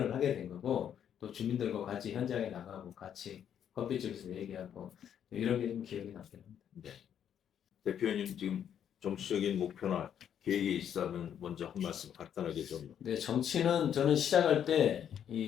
하게 된 거고 또 주민들과 같이 현장에 나가고 같이 커피집에서 얘기하고 이런 게 좀 기억이 남긴 합니다. 네. 대표님 지금 정치적인 목표나 계획이 있다면 먼저 한 말씀 간단하게 좀. 네, 정치는 저는 시작할 때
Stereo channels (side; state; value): right; quieter; 9.2 dB